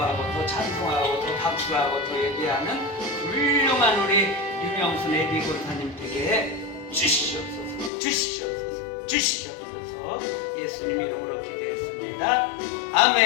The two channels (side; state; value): right; drops out; at 7.9 s